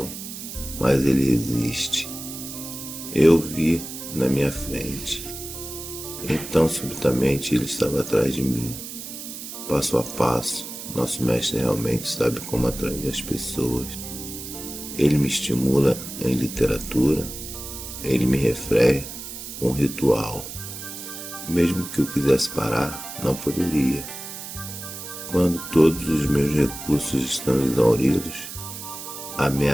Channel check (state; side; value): noise; right; hiss, 10 dB below the sound